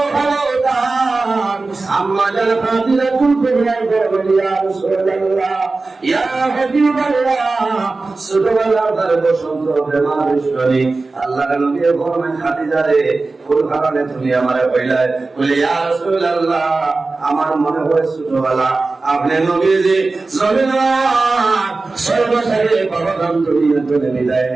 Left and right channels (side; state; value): left; quieter; 3.6 dB